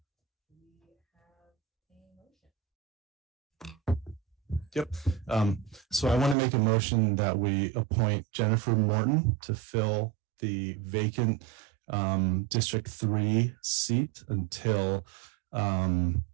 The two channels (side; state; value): left; drops out; at 6.4 s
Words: we have a motion. Yep. So I want to make a motion that we appoint Jennifer Morton to fill the vacant District 3 seat until